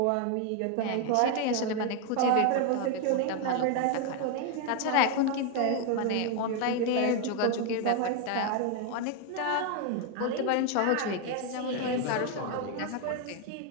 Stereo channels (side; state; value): both; different; correlation 0.01